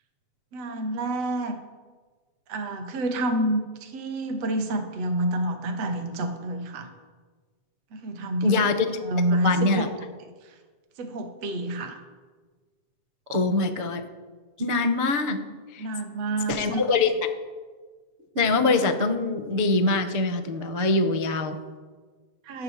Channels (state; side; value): late; left; 6.9 ms